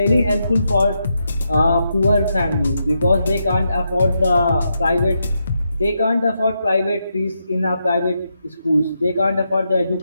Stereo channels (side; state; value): both; inverted; correlation -0.83